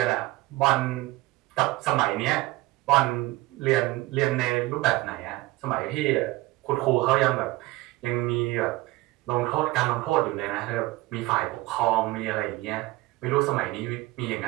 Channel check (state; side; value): quieter; left; 19.5 dB